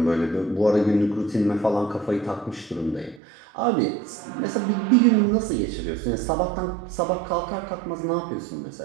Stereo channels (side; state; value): left; drops out; at 3.2 s